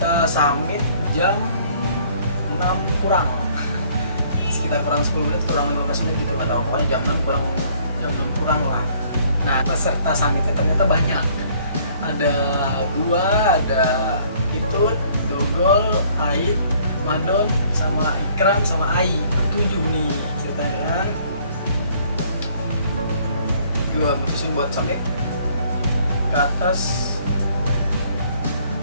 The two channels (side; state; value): both; inverted; correlation -0.60